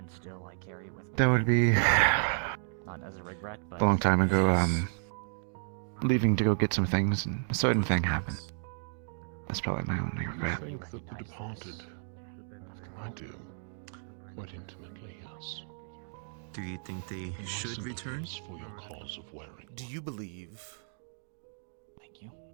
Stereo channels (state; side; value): silent; left; digital silence